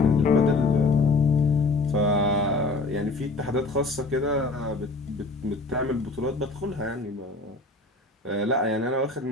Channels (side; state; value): right; quieter; 3.3 dB